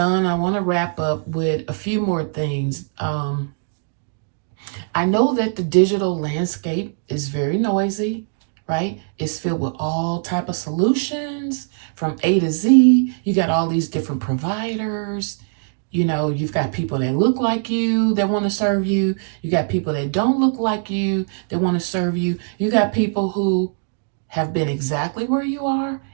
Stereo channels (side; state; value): left; silent; digital silence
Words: I want to wrap up with a few more things. I know that the digital landscape is very noisy, right? It's filled with all type of solutions from A to Z. You got all these different providers. You've got people that look like you that want to serve you. You got people that don't look like you that want to serve you. You got people who have been exactly where you are